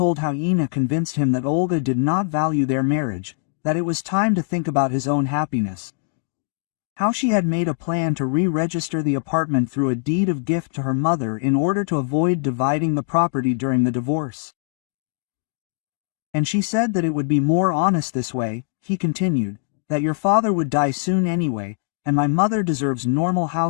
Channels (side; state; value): right; silent; digital silence